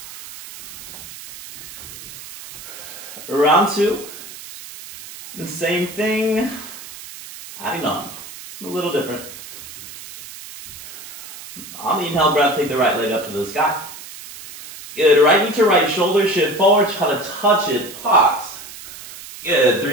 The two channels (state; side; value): noise; right; hiss, 15 dB below the sound